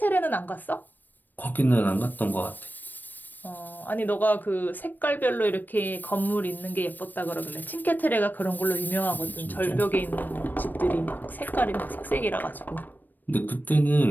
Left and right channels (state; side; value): late; right; 0.090 ms